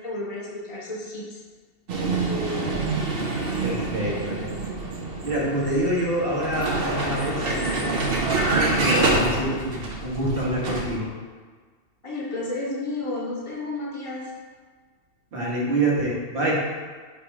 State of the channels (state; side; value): late; left; 2.7 ms